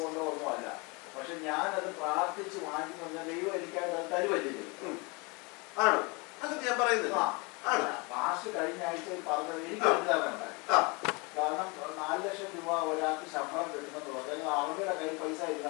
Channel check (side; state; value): right; quieter; 28.8 dB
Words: കൊണ്ടോ ഒന്നുമല്ല, പക്ഷെ ഞാനത് പ്രാർത്ഥിച്ച് വാങ്ങി പറഞ്ഞാൽ ദൈവം എനിക്കായിട്ട് അത് തരുവല്ലേ? ആണ്, അത് ഞാൻ പറയുന്നില്ല. പാസ് കഴിഞ്ഞ ആഴ്ചയിൽ പറഞ്ഞത് എനിക്ക് ഉണ്ടായി. കാരണം 4 ലക്ഷം രൂപ ഒരാൾക്ക് ശമ്പളം കിട്ടുമെന്ന് പറഞ്ഞാൽ അവരുടെ കയ്യിൽ പൈസ ഇല്ല.